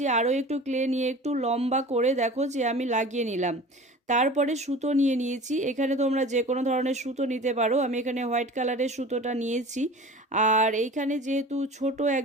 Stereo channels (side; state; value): both; normal; correlation 0.39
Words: আরও একটু ক্লে নিয়ে একটু লম্বা করে দেখো যে আমি লাগিয়ে নিলাম। তারপরে সুতো নিয়ে নিয়েছি, এখানে তোমরা যে কোনো ধরনের সুতো নিতে পারো, আমি এখানে হোয়াইট কালারের সুতোটা নিয়েছি। আর এইখানে যেহেতু ছোট